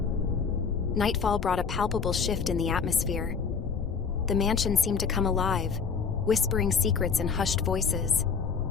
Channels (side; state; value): right; quieter; 5.8 dB